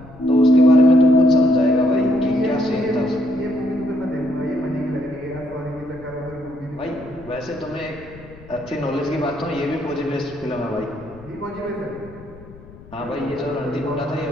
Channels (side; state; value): left; noise; rumble, 20 dB below the sound